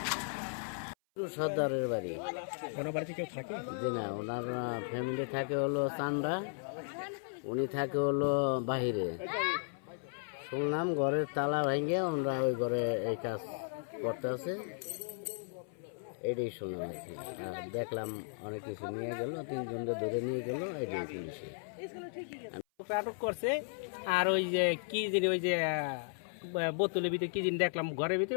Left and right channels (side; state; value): right; silent; 54 dB below the other